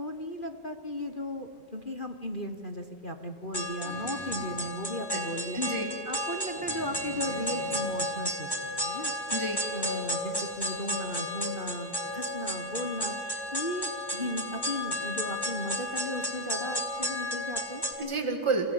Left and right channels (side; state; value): right; late; 1.1 ms